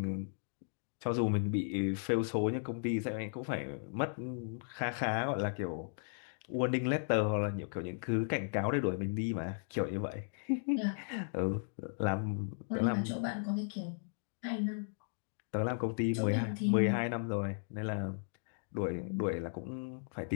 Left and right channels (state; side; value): silent; right; digital silence